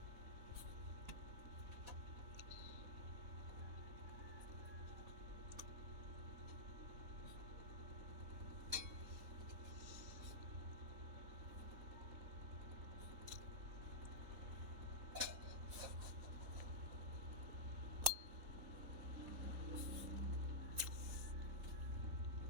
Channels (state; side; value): late; left; 3.8 ms